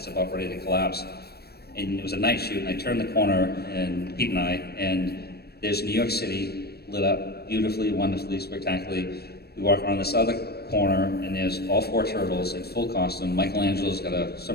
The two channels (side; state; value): right; late; 0.47 ms